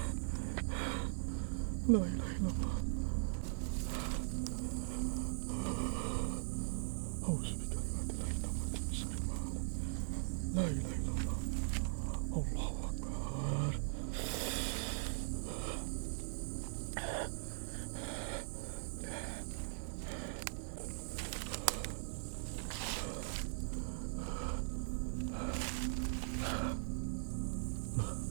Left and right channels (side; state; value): left; silent; 51 dB below the other